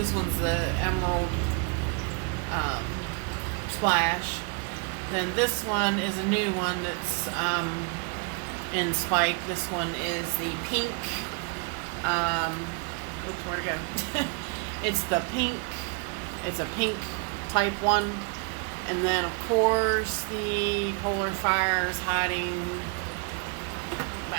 one's the emerald splash. Then this one is a new one that's in spike. This one is the pink. Oops, where'd it go? It's the pink. It's a pink type one. And then, of course, the polar fire is hiding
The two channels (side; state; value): left; quieter; 35.0 dB